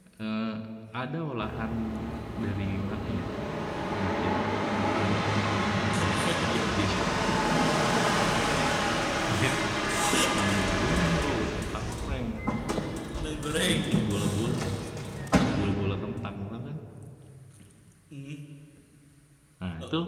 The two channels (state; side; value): identical; both; correlation 1.00